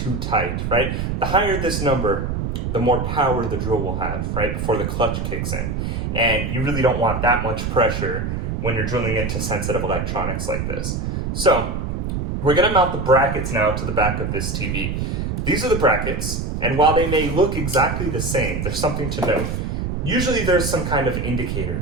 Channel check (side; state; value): right; noise; rumble, 2 dB below the sound